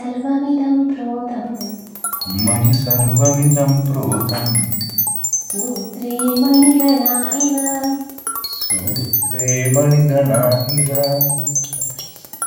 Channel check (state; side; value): identical; both; correlation 1.00